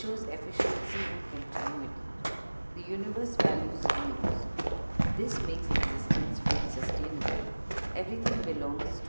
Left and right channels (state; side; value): inverted; both; correlation -1.00